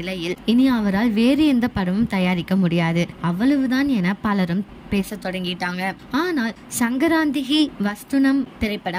இனி அவரால் வேறு எந்த படமும் தயாரிக்க முடியாது, அவ்வளவுதான் என பலரும் பேச தொடங்கிட்டாங்க. ஆனால் சங்கராந்திகி வஸ்துனம்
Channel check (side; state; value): both; identical; correlation 1.00